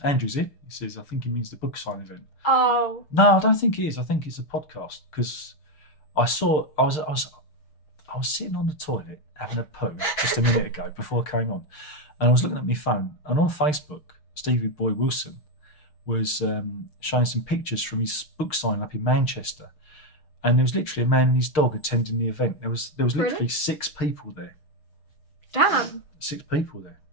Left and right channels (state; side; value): late; right; 6.5 ms